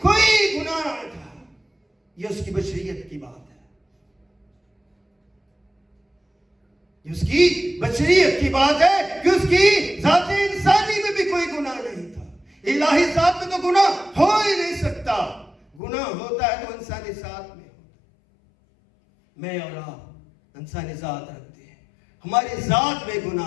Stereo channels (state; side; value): drops out; right; at 15.8 s